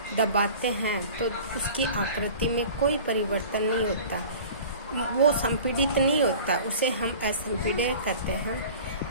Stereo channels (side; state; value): both; inverted; correlation -0.42